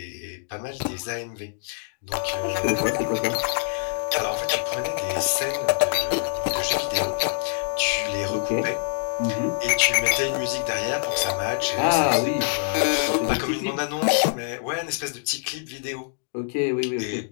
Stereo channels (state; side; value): silent; right; digital silence